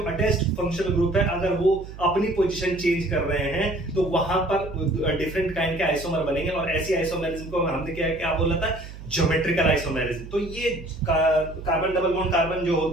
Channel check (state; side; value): noise; right; hum, 13 dB below the sound